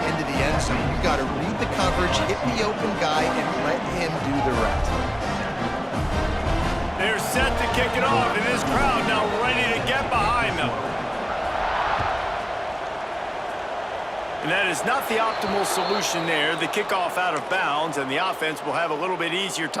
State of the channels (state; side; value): identical; both; correlation 1.00